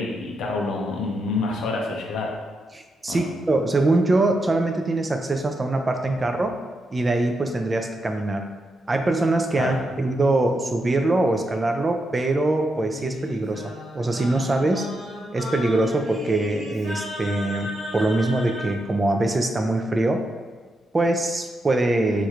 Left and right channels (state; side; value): normal; both; correlation 0.84